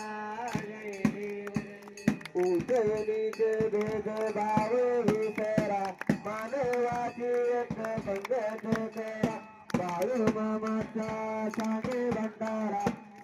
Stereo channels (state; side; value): identical; both; correlation 1.00